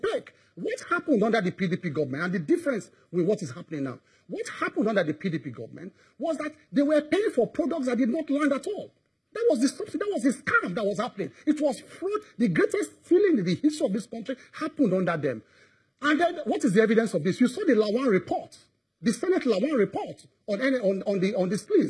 What happened under the PDP government, and the difference with what is happening now? What happened under the PDP government was that they were paying for products that did not land at all. That was the subsidy, that was the scam that was happening. It was fraud. The greatest stealing in the history of this country happened under them. And then, what is the evidence of this? You saw the Lawan report, the Senate Lawan report on the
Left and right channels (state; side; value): identical; both; correlation 1.00